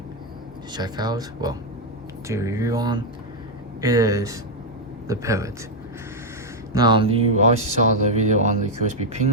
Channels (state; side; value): normal; both; correlation 0.00